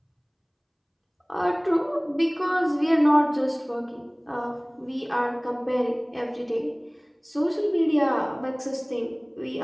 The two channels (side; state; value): both; identical; correlation 1.00